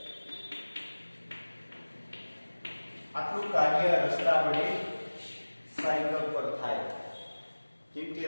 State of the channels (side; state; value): both; inverted; correlation -1.00